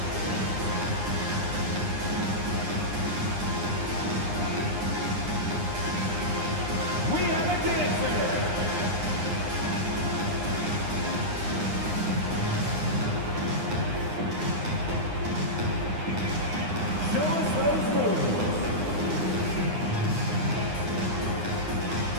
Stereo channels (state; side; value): late; left; 9.7 ms